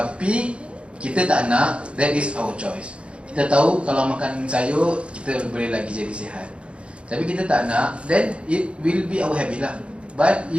kita tak nak, that is our choice. Kita tahu kalau makan sayur kita boleh lagi jadi sihat, tapi kita tak nak, then it will be our habit lah. But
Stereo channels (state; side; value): late; left; 0.059 ms